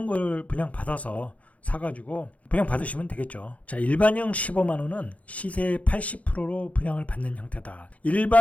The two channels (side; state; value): right; late; 0.067 ms